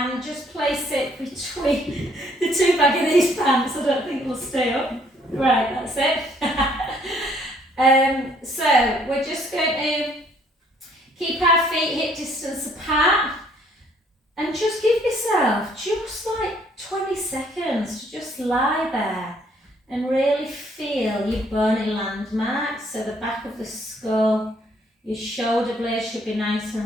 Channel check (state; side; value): normal; both; correlation 0.64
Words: just place it between the two back of these pants. I don't think it'll stay up. Right, that's it. So we're just going to keep our feet hip distance apart and just give yourself just like 20 seconds to just lie there and really feel your bony landmarks. So the back of the skull, your shoulder blades should be nice